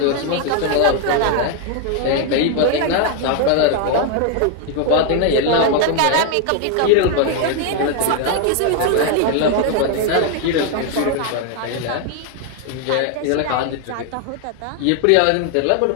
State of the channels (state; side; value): different; both; correlation 0.00